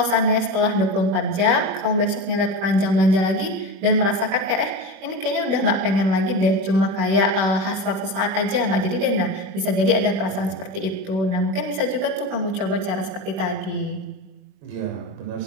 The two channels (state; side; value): late; left; 21 ms